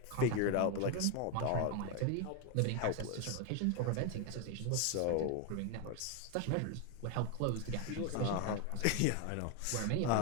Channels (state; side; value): different; both; correlation 0.01